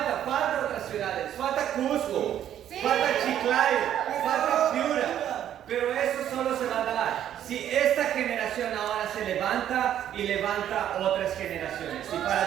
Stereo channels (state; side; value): quieter; left; 10.7 dB